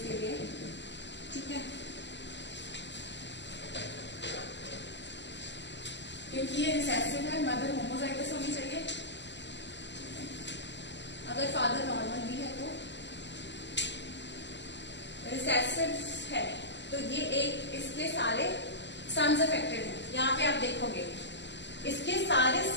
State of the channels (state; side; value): late; right; 0.52 ms